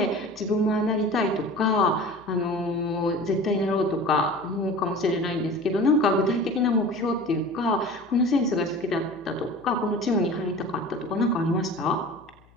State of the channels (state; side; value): noise; left; hum, 29 dB below the sound